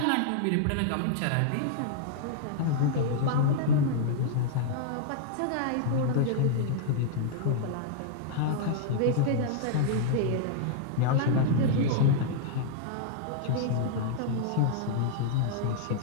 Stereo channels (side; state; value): both; different; correlation -0.02